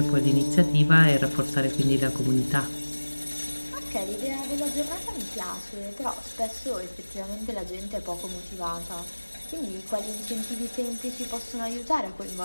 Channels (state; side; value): inverted; both; correlation -1.00